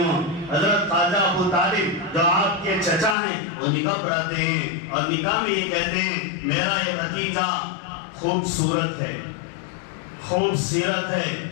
حضرت خواجہ ابو طالب جو آپ کے چچا ہیں وہ نکاح پڑھاتے ہیں اور نکاح میں یہ کہتے ہیں میرا یہ بھتیجا خوبصورت ہے، خوبصورت ہے،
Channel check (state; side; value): drops out; right; at 3.2 s